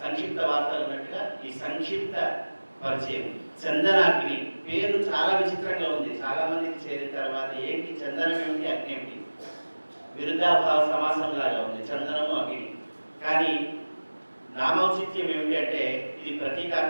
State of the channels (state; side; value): inverted; both; correlation -1.00